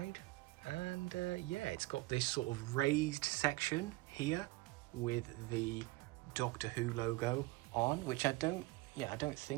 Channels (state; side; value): quieter; left; 21.3 dB